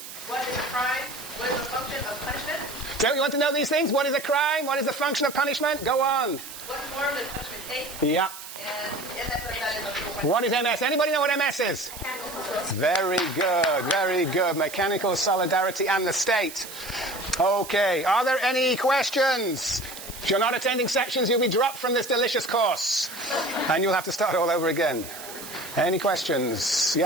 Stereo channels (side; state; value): right; noise; hiss, 12 dB below the sound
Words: is a crime? What is the function of punishment? Don't you want to know these things? What is a crime? What is the function of punishment? Go on. What form does punishment take? Yeah. And MS, that is what is MS? Anybody know what MS is? Very good. Very good. Mechanical solidarity and the state. Okay. Are there any questions? If you're not attending sections, you'll be dropped from this delicious course. And you'll have to start all over again. Any questions?